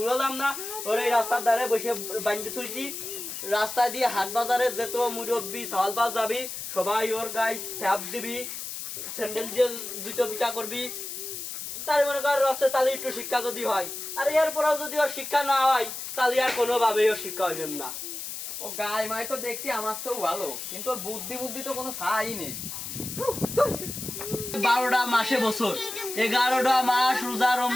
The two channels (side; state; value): left; noise; hiss, 7 dB below the sound